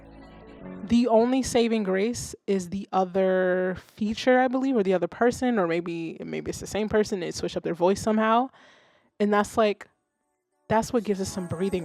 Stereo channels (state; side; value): identical; both; correlation 1.00